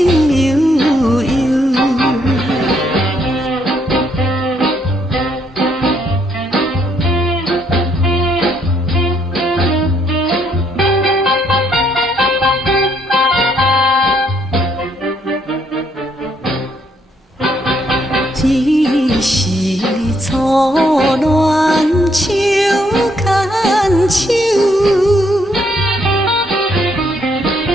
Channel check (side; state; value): both; normal; correlation 0.71